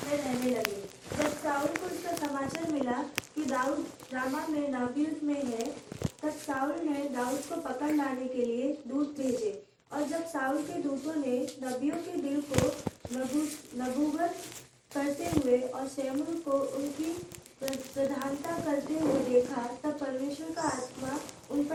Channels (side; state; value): both; identical; correlation 1.00